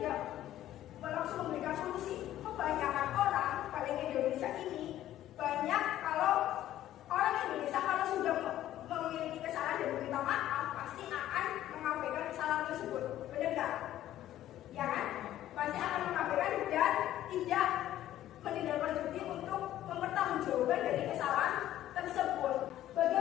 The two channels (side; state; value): right; quieter; 13.0 dB